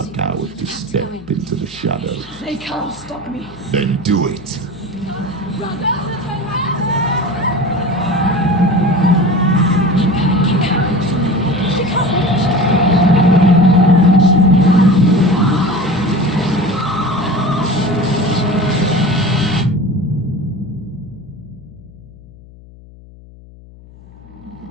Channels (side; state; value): left; noise; hum, 22 dB below the sound